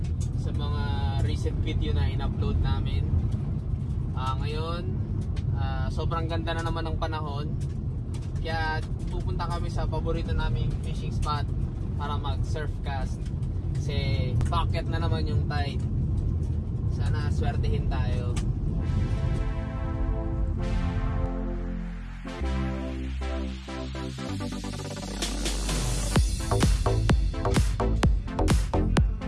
sa mga recent video na in-upload namin. Ngayon, sobrang ganda na naman ng panahon. Kaya pupunta kami sa paborito naming fishing spot para mag-surf cast. Kasi bucket na naman yung tide. Sana swertehin tayo.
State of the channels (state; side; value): identical; both; correlation 1.00